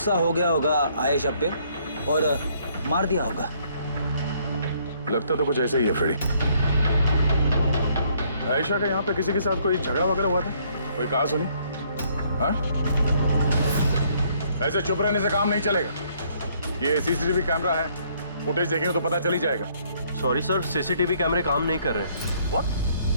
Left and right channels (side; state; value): both; inverted; correlation -0.66